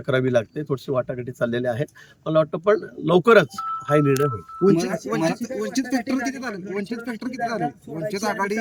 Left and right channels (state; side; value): identical; both; correlation 1.00